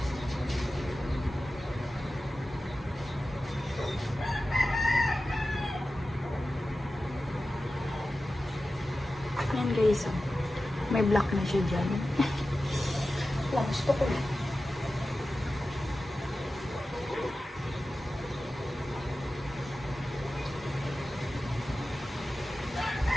Yan guys, may black na siya dyan. Wala, gusto ko na.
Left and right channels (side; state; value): both; normal; correlation 0.94